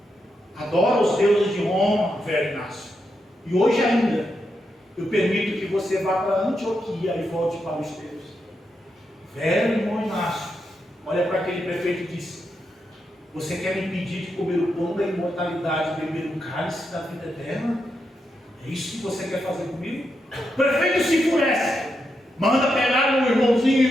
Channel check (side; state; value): both; normal; correlation 0.84